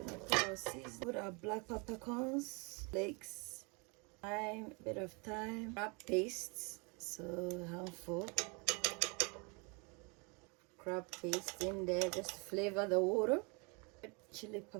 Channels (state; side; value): quieter; left; 31.7 dB